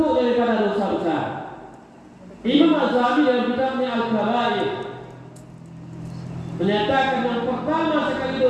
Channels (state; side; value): identical; both; correlation 1.00